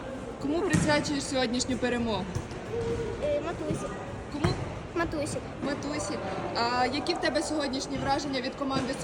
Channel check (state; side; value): identical; both; correlation 1.00